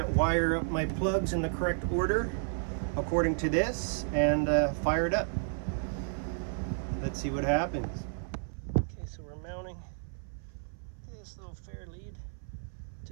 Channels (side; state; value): left; silent; 56 dB below the other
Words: wire up my plugs in the correct order according to this, and fire it up. Let's see what happens. Okay, so we're mounting this little fair lead